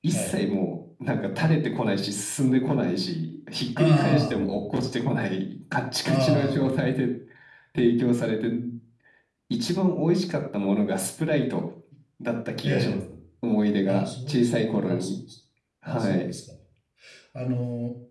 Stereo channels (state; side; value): identical; both; correlation 1.00